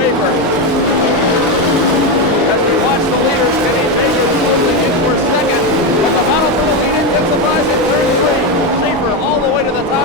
As we watch the leaders, Kenny Jacobs closing in for second, but the battle for the lead intensifies in turn 3. Schaefer all the way to the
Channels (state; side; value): normal; both; correlation 0.11